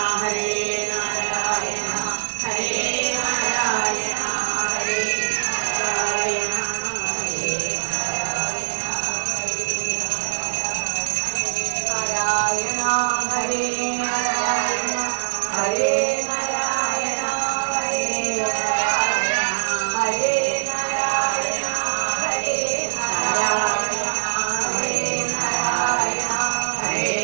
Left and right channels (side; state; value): left; silent; 64 dB below the other